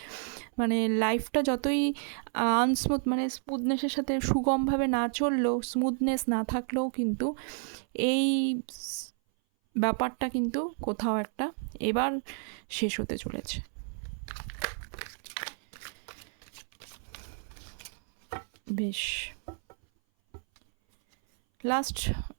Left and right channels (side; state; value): left; silent; 57 dB below the other